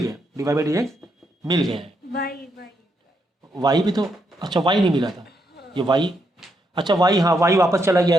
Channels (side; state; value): both; normal; correlation 0.79